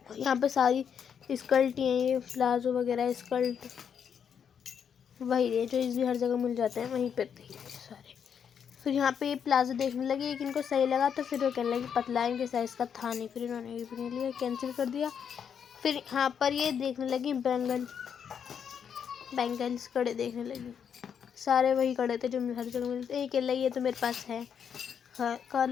यहाँ पे सारी स्कर्ट हैं, ये प्लाजो वगैरह स्कर्ट वही है जो इस भी हर जगह मिल जाते हैं, वहीं पे थे सारे। फिर यहाँ पे ये प्लाजो देखने लगी, एक इनको सही लगा तो फिर वो कहने लगी पतला है, इनके साइज़ का था नहीं, फिर इन्होंने ये भी नहीं लिया, कैंसिल कर दिया। फिर यहाँ पर ये देखने लगी बैंगल्स कड़े देखने लगी, सारे वही कड़े थे जो हर जगह मिलते हैं। ये कह रही ये तो मेरे पास है, हाँ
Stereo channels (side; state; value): right; quieter; 7.7 dB